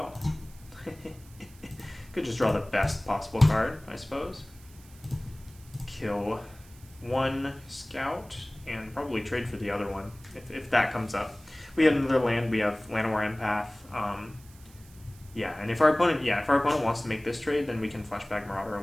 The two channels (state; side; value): noise; right; hiss, 24 dB below the sound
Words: could just draw the best possible card, I suppose. Kill 1 scout and probably trade for the other one if that comes up. We have another land. We have Llanowar Empath. Yeah, and if our opponent wants to make this trade, then we can Fleshback Marauder